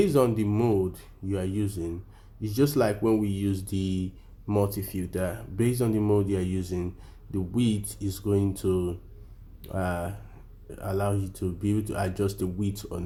on the mode you are using, it's just like when we use the multi filter. Based on the mode you are using, the width is going to uh, allow you to be able to adjust the width or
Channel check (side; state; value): both; identical; correlation 1.00